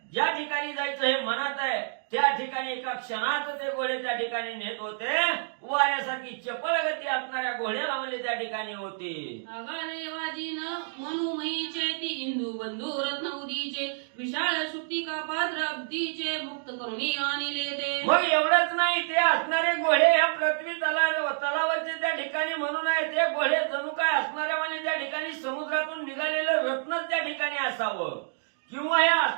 ज्या ठिकाणी जायचं हे मनात आहे, त्या ठिकाणी एका क्षणात ते घोडे त्या ठिकाणी नेत होते. वाऱ्यासारखी चपळ गती असणाऱ्या घोड्याला म्हणजे त्या ठिकाणी होती. आगारे वाजीन मनुमयीचे ती इंदू बंधू रत्न उदीचे विशाळ शुक्तिका पात्र अब्दीचे मुक्त करुणी आणले ते. मग एवढंच नाही, ते असणारे घोडे या पृथ्वी तलावाचे त्या ठिकाणी म्हणून आहे. ते घोडे जणू काय असणाऱ्या म्हणजे त्या ठिकाणी समुद्रातून निघालेलं रत्नच त्या ठिकाणी असावं, किंवा या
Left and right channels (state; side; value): silent; left; digital silence